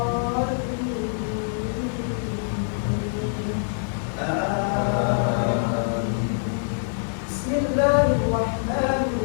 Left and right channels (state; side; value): silent; right; digital silence